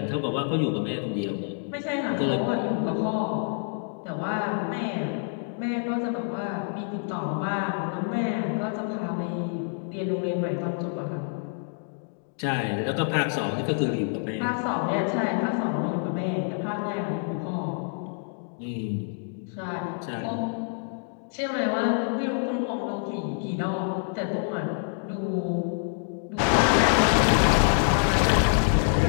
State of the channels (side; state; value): right; silent; 60 dB below the other